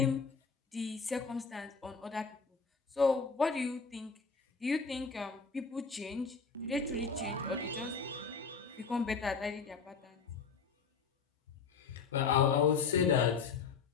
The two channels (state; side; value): quieter; right; 5.3 dB